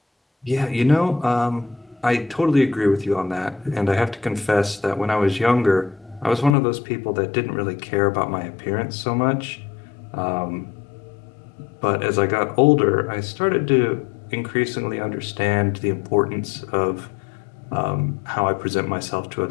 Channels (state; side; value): drops out; right; at 6.6 s